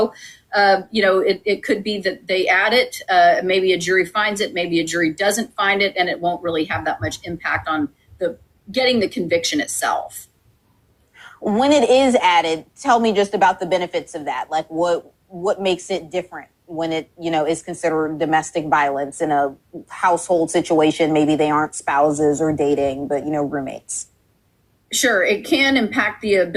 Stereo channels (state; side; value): identical; both; correlation 1.00